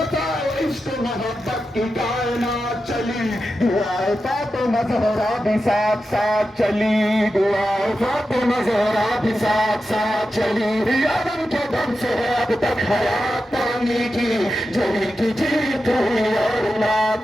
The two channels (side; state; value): both; normal; correlation 0.90